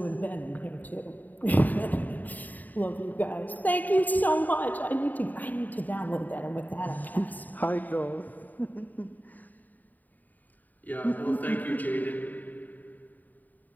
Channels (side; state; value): right; late; 0.083 ms